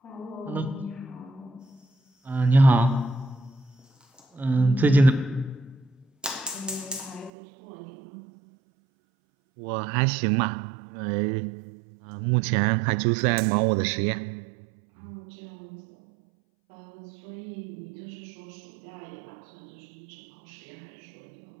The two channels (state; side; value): drops out; left; at 7.3 s